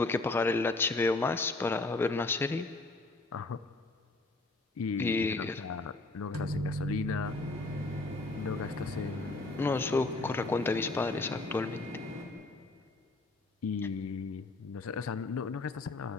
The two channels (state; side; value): quieter; right; 3.2 dB